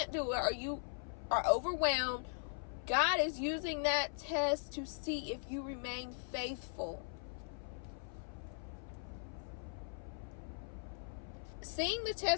do it, or you are overwhelmed, God is using that test to see if you remain faithful. Seeing the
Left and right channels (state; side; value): silent; right; 51 dB below the other